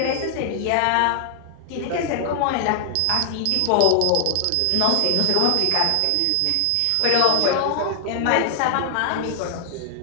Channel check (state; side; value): different; both; correlation 0.00